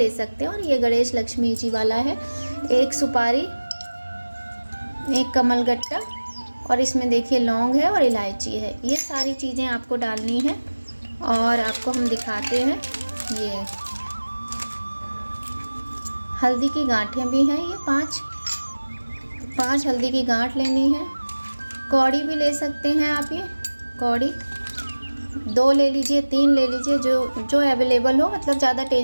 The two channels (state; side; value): inverted; both; correlation -1.00